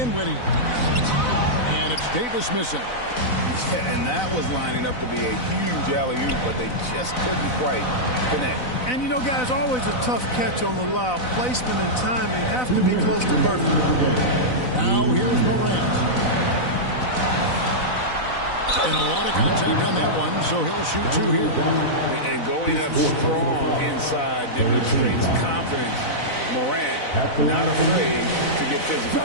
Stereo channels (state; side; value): late; right; 4.0 ms